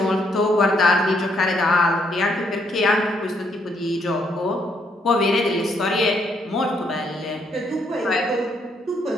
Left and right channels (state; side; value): normal; both; correlation 0.72